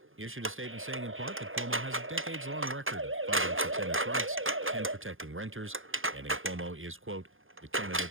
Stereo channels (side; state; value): left; late; 0.59 ms